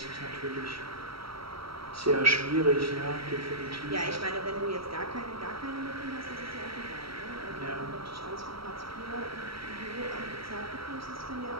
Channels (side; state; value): left; late; 0.75 ms